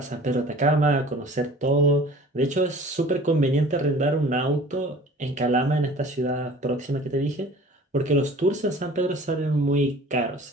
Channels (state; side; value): normal; both; correlation 0.45